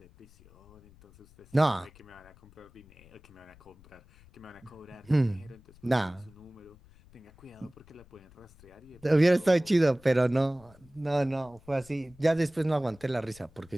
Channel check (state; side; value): noise; left; rumble, 25 dB below the sound